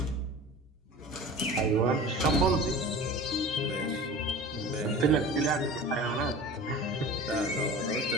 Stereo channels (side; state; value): both; normal; correlation 0.37